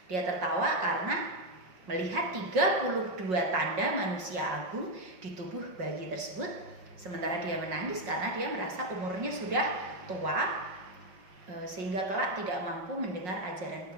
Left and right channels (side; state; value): left; late; 5.5 ms